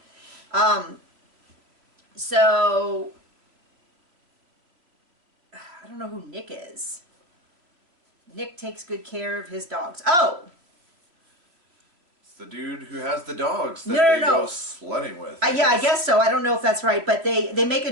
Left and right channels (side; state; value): left; late; 3.0 ms